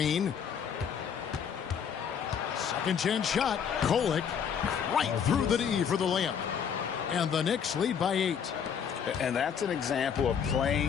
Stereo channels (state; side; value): quieter; right; 7.6 dB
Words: Second chance shot. Kolek right through the D for the layup. And the Knicks lead by 8. And that's an example of